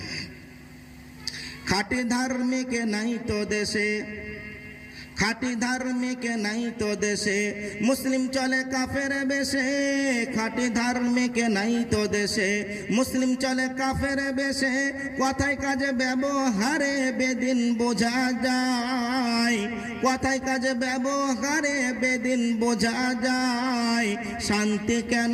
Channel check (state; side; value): identical; both; correlation 1.00